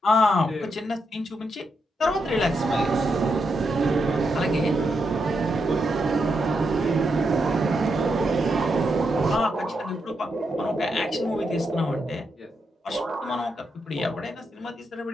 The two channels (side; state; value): both; normal; correlation 0.82